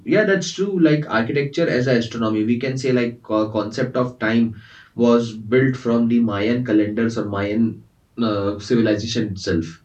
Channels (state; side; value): identical; both; correlation 1.00